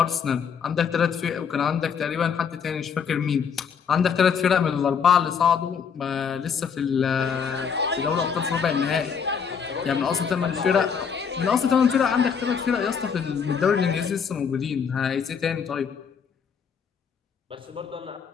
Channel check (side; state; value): right; quieter; 6.7 dB